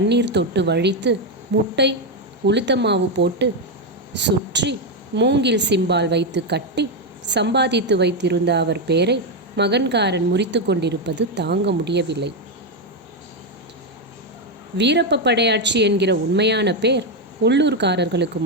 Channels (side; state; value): both; normal; correlation 0.06